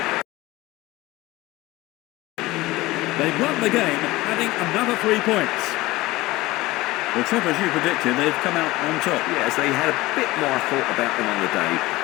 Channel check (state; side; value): quieter; right; 19.3 dB